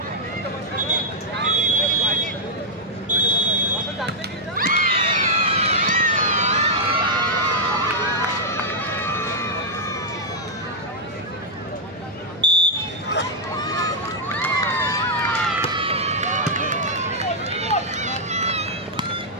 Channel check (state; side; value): normal; both; correlation -0.04